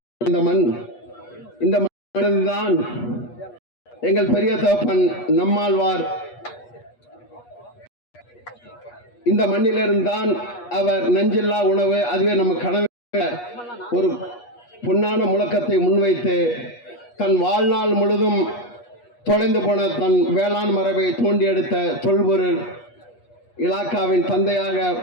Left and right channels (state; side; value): late; right; 8.3 ms